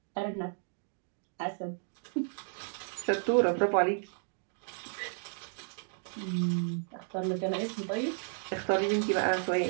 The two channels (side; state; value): left; silent; digital silence